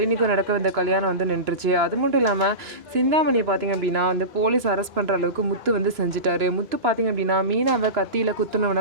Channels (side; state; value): left; late; 2.9 ms